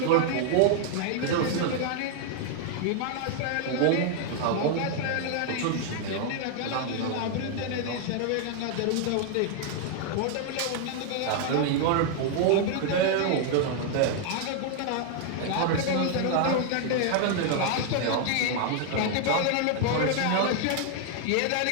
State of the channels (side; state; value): both; different; correlation 0.00